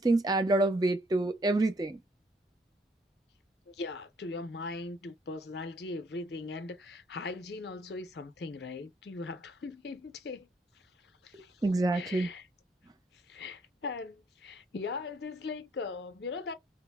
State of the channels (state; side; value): normal; both; correlation 0.66